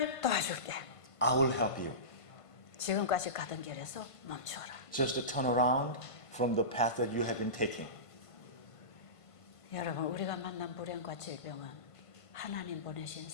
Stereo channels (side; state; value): right; late; 1.5 ms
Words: 도와줄게. I will help you. 지금까지 가던 길에서 멈춰라. Just to turn around from the path that you have been taking. 여러분, 우리가 만난 불행과 질병은 하나님 보내신